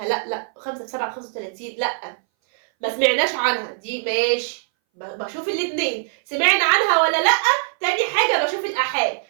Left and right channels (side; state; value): left; silent; 61 dB below the other